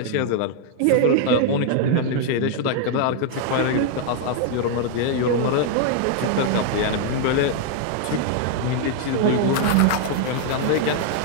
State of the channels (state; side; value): different; both; correlation 0.00